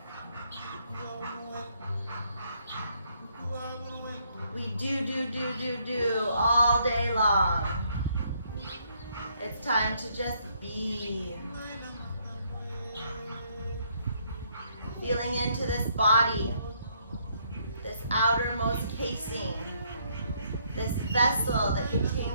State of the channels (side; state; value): both; inverted; correlation -0.70